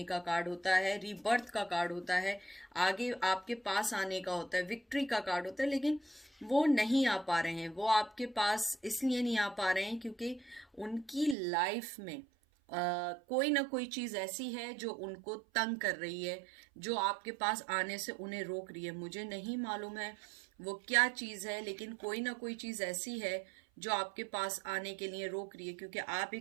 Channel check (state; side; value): drops out; left; at 11.4 s